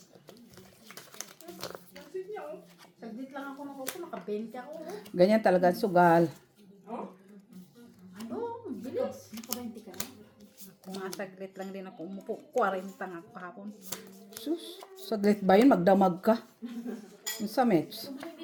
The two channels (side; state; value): both; identical; correlation 1.00